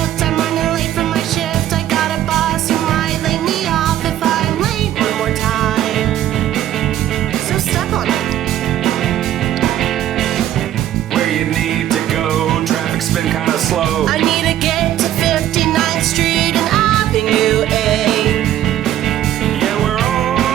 I'm running late for my shift. I got a boss who might lay me off if I'm late one more time. So stuck on it. Where you need to go, traffic's been kinda slow. I need to get to 59th Street and Avenue A. Yeah, we're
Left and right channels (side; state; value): left; quieter; 12.4 dB